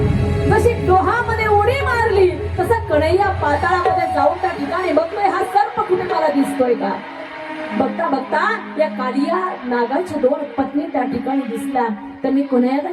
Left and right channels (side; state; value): both; identical; correlation 1.00